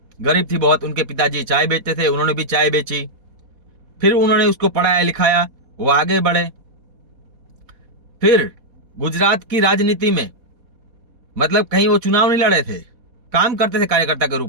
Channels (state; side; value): late; left; 4.2 ms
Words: गरीब थी बहुत। उनके पिताजी चाय बेचते थे, उन्होंने भी चाय बेची। फिर उन्होंने उसको पढ़ाया लिखाया, वो आगे बढ़े। फिर गुजरात की राजनीति में, मतलब कहीं वो चुनाव नहीं लड़े थे, काम करते थे कार्यकर्ता के